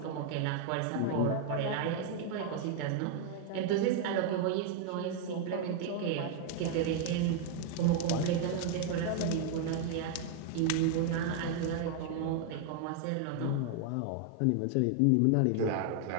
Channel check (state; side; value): different; both; correlation 0.00